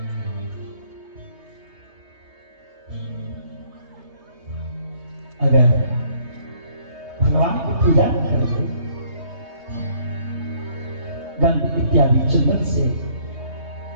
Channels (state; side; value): late; left; 3.2 ms